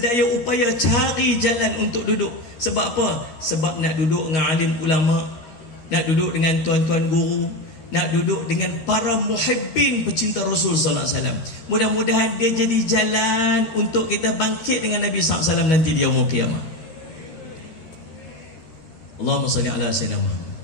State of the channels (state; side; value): late; right; 13 ms